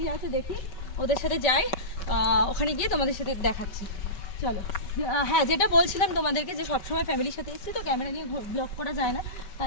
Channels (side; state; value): right; late; 5.3 ms